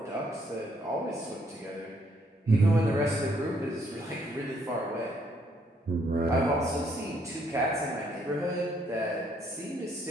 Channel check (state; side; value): normal; both; correlation 0.69